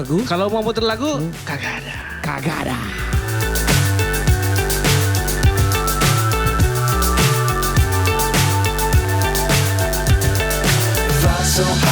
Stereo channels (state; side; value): identical; both; correlation 1.00